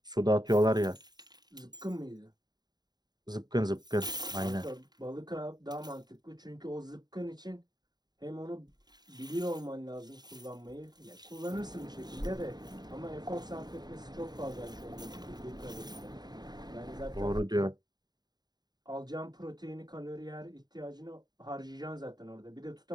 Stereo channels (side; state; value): left; late; 0.20 ms